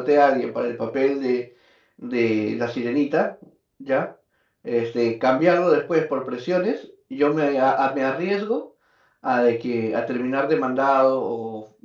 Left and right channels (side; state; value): both; identical; correlation 1.00